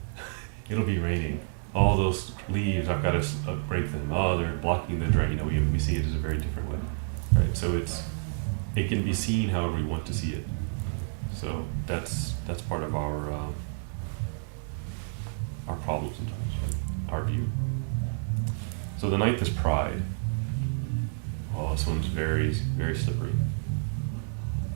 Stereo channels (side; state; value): left; silent; digital silence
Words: It'll be raining. All those leaves, I've got to break them. Oh, they're blocking the drain. We see it as a very different way, right? So it can be seen however we want to see it. So that's part of our problem sometimes, right? Our view. So the ninth is pride. Oh, this one's very, very slippery.